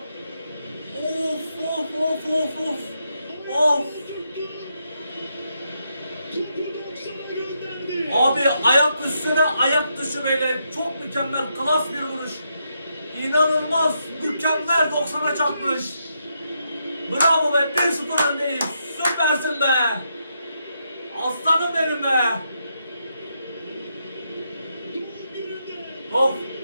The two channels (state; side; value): inverted; both; correlation -0.80